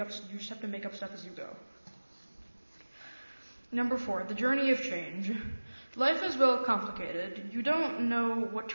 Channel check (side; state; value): both; inverted; correlation -1.00